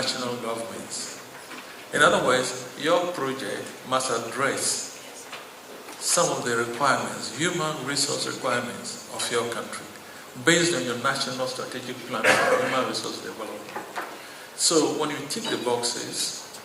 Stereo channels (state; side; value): identical; both; correlation 1.00